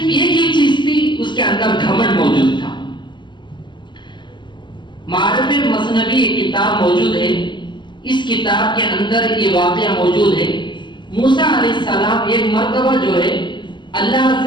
ایک ہی چیز تھی، اس کے اندر گھمنڈ موجود تھا۔ معارف مثنوی ایک کتاب موجود ہے، اس کتاب کے اندر یہ واقعہ موجود ہے۔ موسیٰ علیہ السلام ایک مرتبہ جو ہے اللہ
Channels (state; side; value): late; right; 0.22 ms